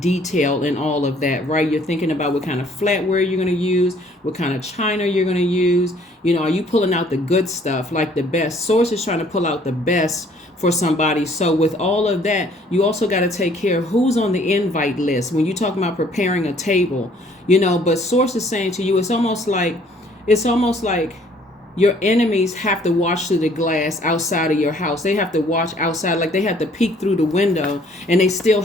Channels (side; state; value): both; normal; correlation 0.60